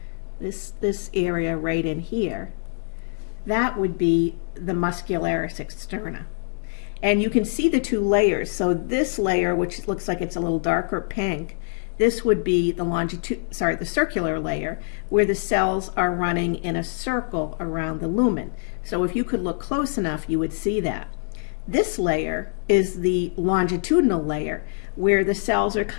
This area right in here, that would be the muscularis externa. And you can see the two layers. So this layer, which looks like it's a little darker pink, this would be the circular layer, where the cells are running in a circle around the lumen. So if you could look close enough, you would see that. This layer is the longitudinal layer, where the cells are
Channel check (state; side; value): silent; right; digital silence